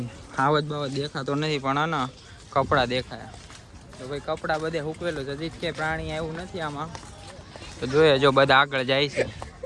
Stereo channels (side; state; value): both; identical; correlation 1.00